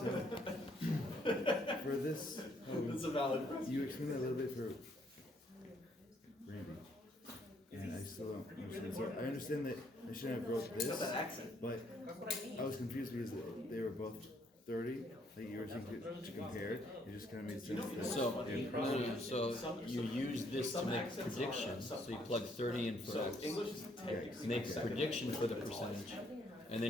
for this, It's a valid question. you explained that a little bit for Randy, and I still don't understand. So I understand that I shouldn't have wrote It's got that this, accent. but I was confused because they were both 30, like you were saying to compare. It just kind of made sense. that So, they're no, so you use this to make predictions. So you plug 30 in for So X. English is Yeah, Make a prediction for the percentage. And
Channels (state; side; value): normal; both; correlation 0.68